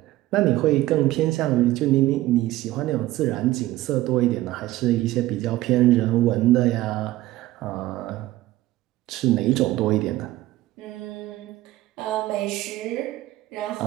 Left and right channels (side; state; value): left; quieter; 16.3 dB